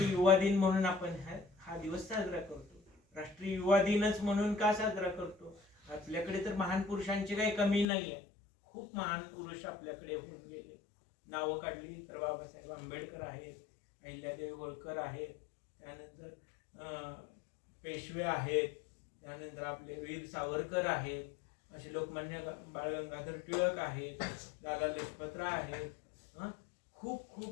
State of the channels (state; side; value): drops out; right; at 7.9 s